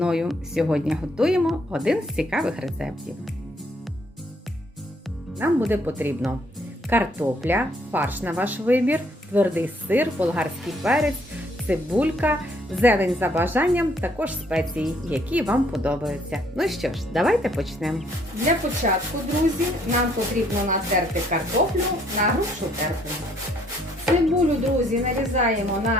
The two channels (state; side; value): normal; both; correlation 0.66